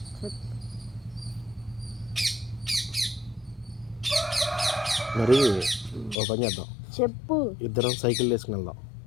చెప్పు. మరి ఓపెన్ చేద్దాం. చెప్పు. ఇద్దరం సైకిల్ వేసుకుని వెళ్దాం.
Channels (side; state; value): right; drops out; at 6.2 s